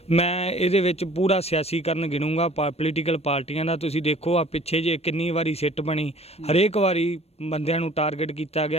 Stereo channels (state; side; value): late; right; 0.30 ms